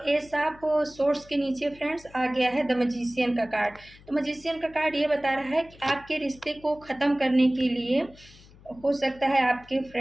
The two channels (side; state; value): left; noise; hum, 24 dB below the sound